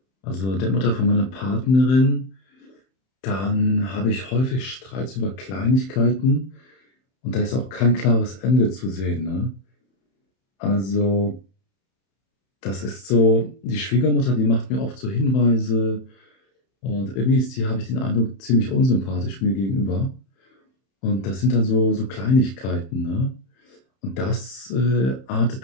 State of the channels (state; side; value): late; right; 31 ms